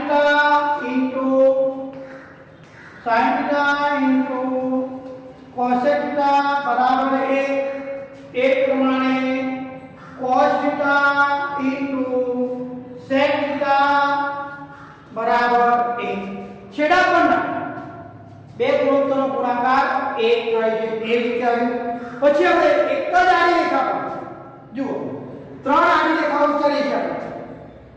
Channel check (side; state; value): both; identical; correlation 1.00